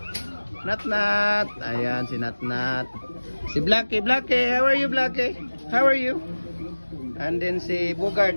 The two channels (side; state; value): both; inverted; correlation -1.00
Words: Natnat. Ayan si Natnat. Si Blackie, Blackie. How are you, Blackie? How are you? And then si